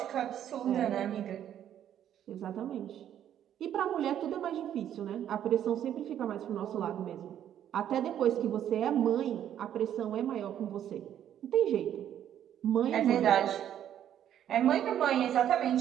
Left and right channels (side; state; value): left; quieter; 10.5 dB